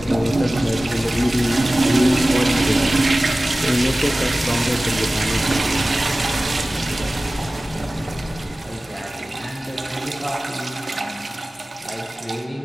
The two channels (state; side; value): normal; both; correlation 0.97